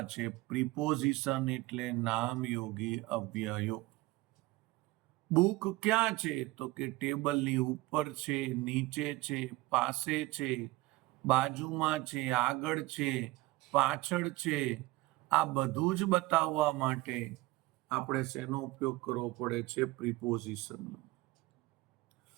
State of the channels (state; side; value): quieter; left; 19.6 dB